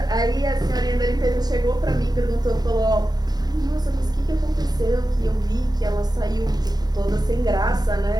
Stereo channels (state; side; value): late; left; 0.19 ms